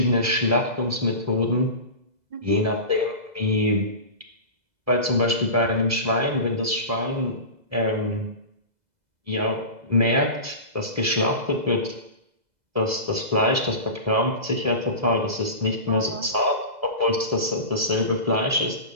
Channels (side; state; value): left; late; 2.0 ms